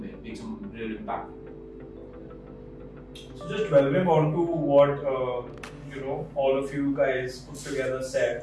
real impact. So just delving on to what all of you guys put together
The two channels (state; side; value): identical; both; correlation 1.00